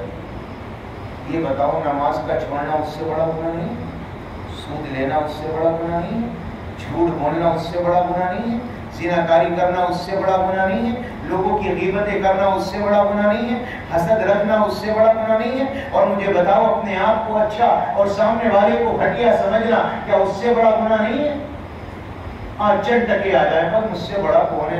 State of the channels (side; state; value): both; identical; correlation 1.00